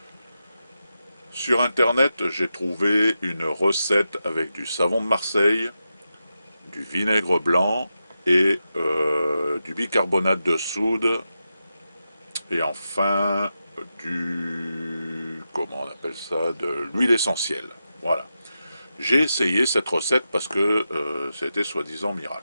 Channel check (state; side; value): inverted; both; correlation -0.89